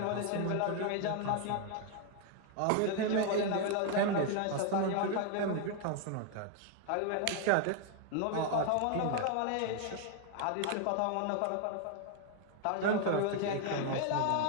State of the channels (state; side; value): different; both; correlation 0.00